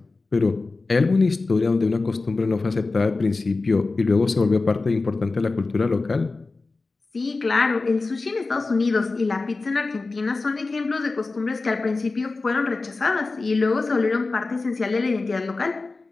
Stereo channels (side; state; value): right; quieter; 3.7 dB